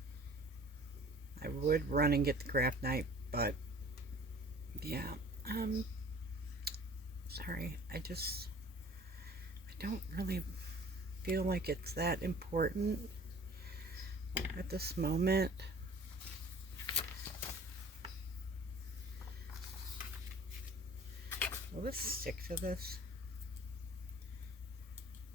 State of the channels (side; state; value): both; normal; correlation 0.48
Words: I would run and get the craft knife, but yeah, sorry, I don't really feel like it's that important at this moment. Will this stick to this